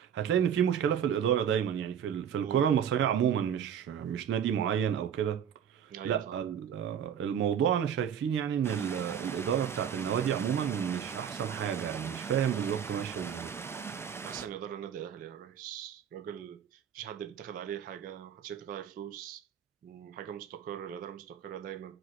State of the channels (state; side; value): quieter; left; 8.6 dB